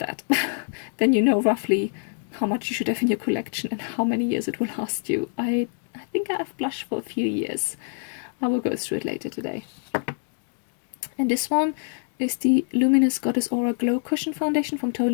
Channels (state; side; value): silent; right; 62 dB below the other